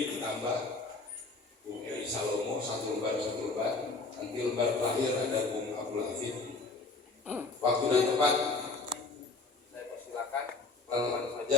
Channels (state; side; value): quieter; right; 3.6 dB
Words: Tambah, Bung Edi Salomo, satu lembar. Nanti lembar terakhir ada Bung Abdul Hafid. Waktu dan tempat saya persilakan, teman-teman saja